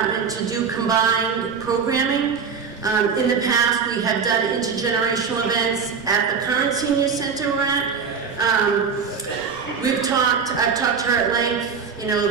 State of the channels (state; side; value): quieter; left; 6.0 dB